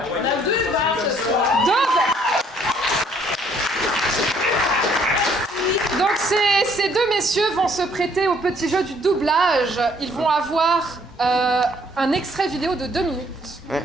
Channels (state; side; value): normal; both; correlation 0.63